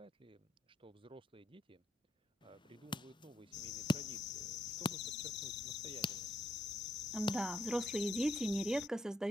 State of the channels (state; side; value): normal; both; correlation 0.76